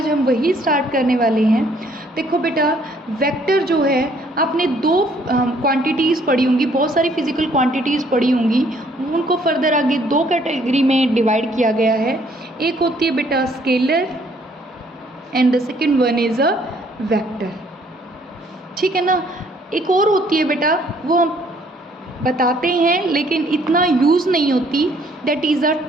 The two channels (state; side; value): normal; both; correlation 0.63